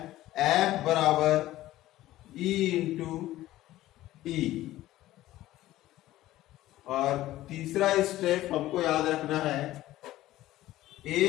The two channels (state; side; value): quieter; right; 15.3 dB